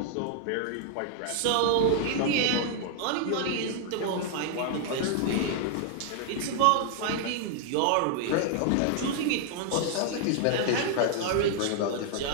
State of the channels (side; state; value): both; different; correlation 0.00